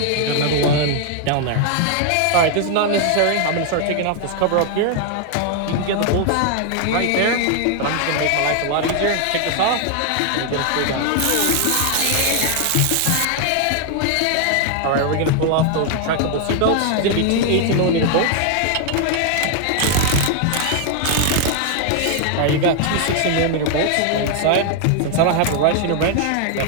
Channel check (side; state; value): both; different; correlation 0.00